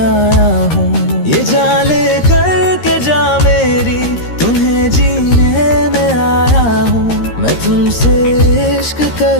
हूँ। ये जान ले कर के जा मेरी तुम्हें जीने तुमसे इश्क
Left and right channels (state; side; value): late; right; 13 ms